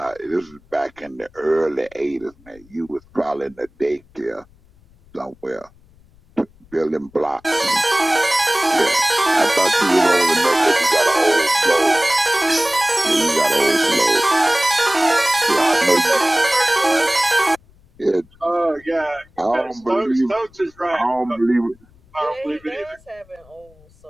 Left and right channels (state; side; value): noise; left; rumble, 29 dB below the sound